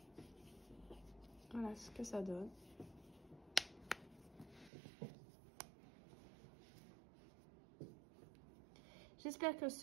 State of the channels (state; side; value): drops out; left; at 4.7 s